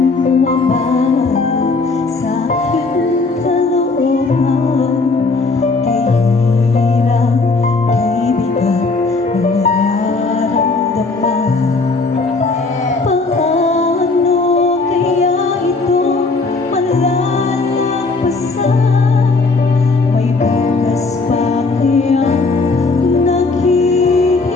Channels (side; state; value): right; quieter; 3.8 dB